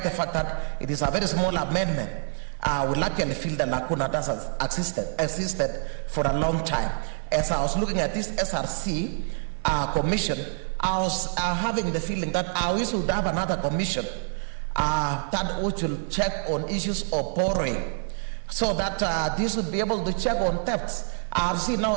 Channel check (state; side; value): silent; left; 60 dB below the other